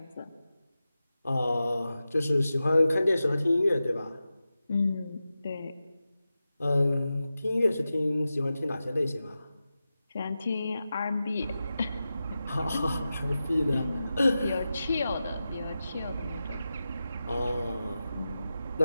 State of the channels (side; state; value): both; inverted; correlation -0.93